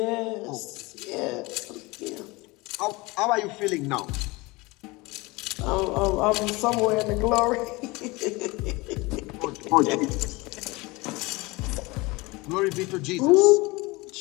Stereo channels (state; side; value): quieter; right; 23.5 dB